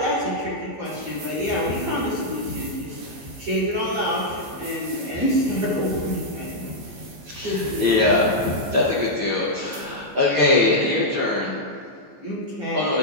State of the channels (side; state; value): left; late; 14 ms